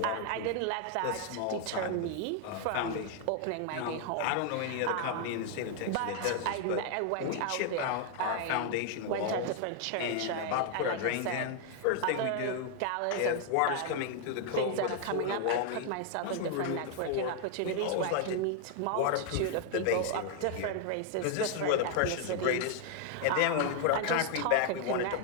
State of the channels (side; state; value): both; different; correlation 0.00